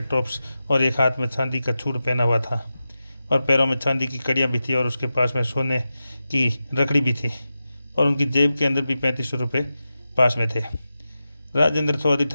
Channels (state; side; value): inverted; both; correlation -0.92